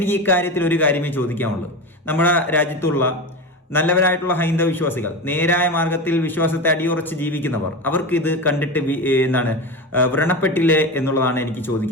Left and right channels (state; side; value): normal; both; correlation 0.23